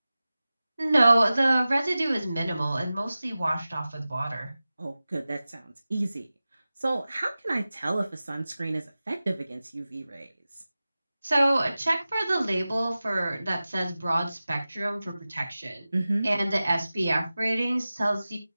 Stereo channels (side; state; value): both; inverted; correlation -0.96